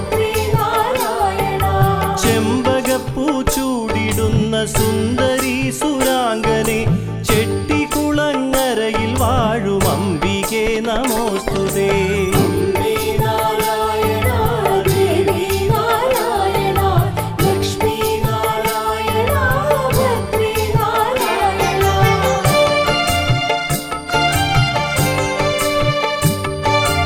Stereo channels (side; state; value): both; identical; correlation 1.00